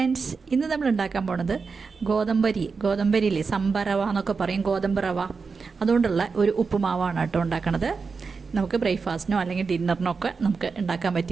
ഇന്ന് നമ്മൾ ഉണ്ടാക്കാൻ പോണത് ഗോതമ്പരിയില്ലേ, സംഭരവ എന്നൊക്കെ പറയും, ഗോതമ്പ് റവ. അതുകൊണ്ടുള്ള ഒരു ഉപ്പുമാവാണ് കേട്ടോ ഉണ്ടാക്കണത്. നമുക്ക് ബ്രേക്ക്ഫാസ്റ്റിനോ അല്ലെങ്കിൽ ഡിന്നറിനോ ഒക്കെ നമുക്ക് ഉണ്ടാക്കാൻ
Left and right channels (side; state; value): left; quieter; 4.9 dB